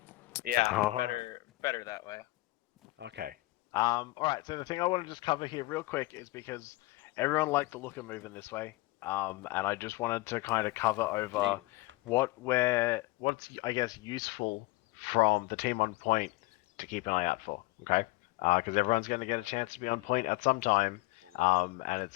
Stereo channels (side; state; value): right; quieter; 21.5 dB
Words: Yeah, Oh, better that way. Okay. Alright, so the thing I want to just cover here real quick is because everyone liked the look of moving this way, and I just wanted to kind of cover over what's, I guess, useful from the team on point to keep an eye out for, okay? Because everyone's going to get a chance to be on point at some time, and it's